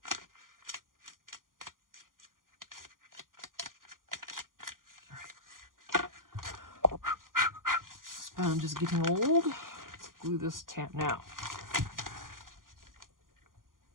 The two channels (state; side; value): late; left; 0.90 ms